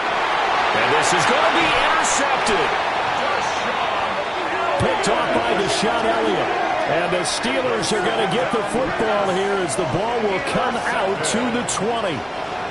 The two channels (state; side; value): identical; both; correlation 1.00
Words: this is going to be intercepted. Picked off by Deshaun Elliott. And the Steelers are going to get the football here as the ball will come out to the 20.